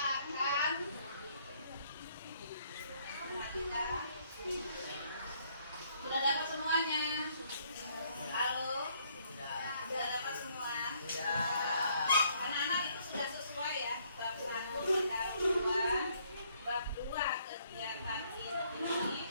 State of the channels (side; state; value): both; inverted; correlation -0.67